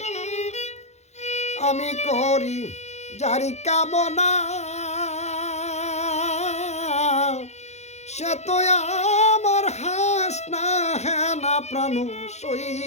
আমি করি যারি কামনা, সে তো আমার হাস না হে না প্রাণ সই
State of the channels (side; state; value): right; late; 0.32 ms